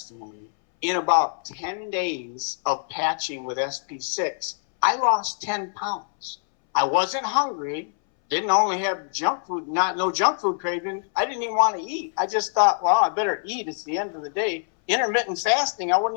In about 10 days of patching with SP6, I lost 10 pounds. I wasn't hungry, didn't only have junk food, no junk food craving. I didn't even want to eat. I just thought, well, I better eat. It's the end of the day. Intermittent fasting, I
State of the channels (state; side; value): silent; right; 62 dB below the other